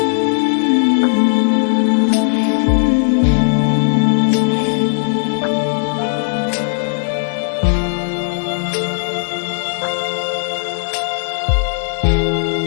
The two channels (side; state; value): right; silent; digital silence